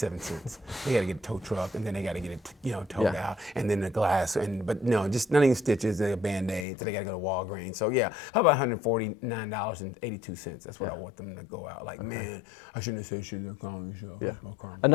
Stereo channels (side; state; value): right; drops out; at 6.7 s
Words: They gotta get a tow truck, and then they gotta get it, you know, towed out, and then the glass, but no, just not even stitches, a Band-Aid. So they gotta go to Walgreens. So yeah, how about $149.82? That's what I want them to go out. Like, man, I shouldn't have said shit in the comedy show. Yeah. That's my karma.